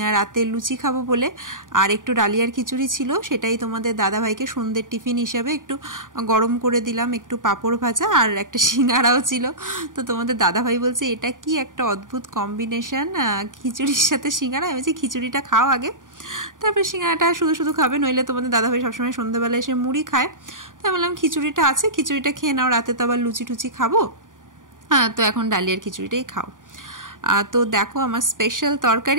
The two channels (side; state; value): left; late; 0.88 ms